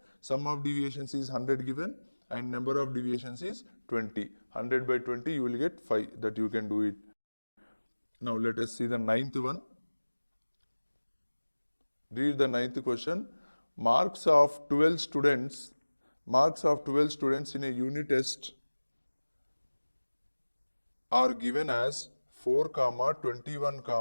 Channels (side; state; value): both; inverted; correlation -1.00